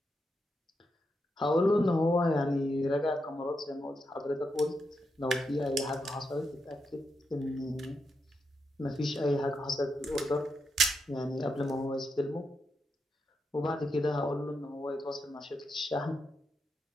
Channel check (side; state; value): both; normal; correlation 0.84